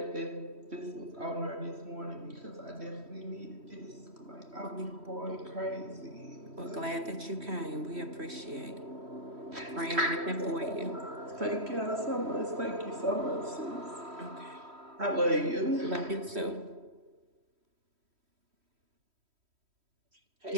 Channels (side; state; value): left; late; 3.1 ms